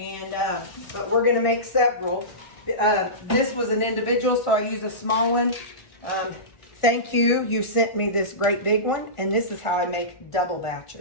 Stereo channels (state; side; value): late; right; 1.4 ms